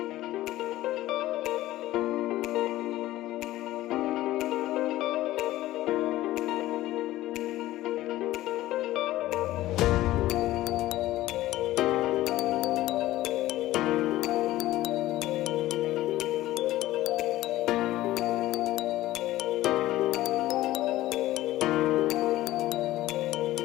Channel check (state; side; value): quieter; right; 15.8 dB